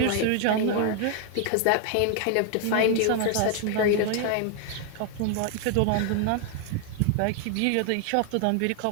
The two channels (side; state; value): both; different; correlation 0.00